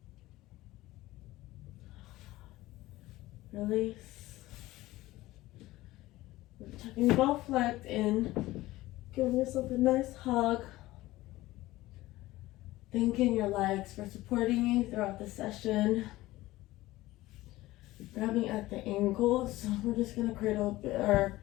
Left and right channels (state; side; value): quieter; right; 17.6 dB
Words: Release. Tucking both legs in. Giving yourself a nice hug. Thanking your legs for supporting you throughout the session. Grabbing at the ankles. We're just gonna cradle or